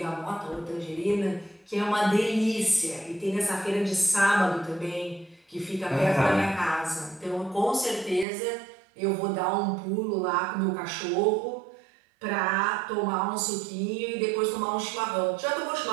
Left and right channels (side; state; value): left; drops out; at 8.2 s